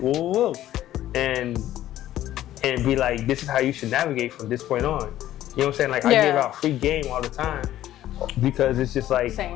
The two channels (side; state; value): right; quieter; 13.2 dB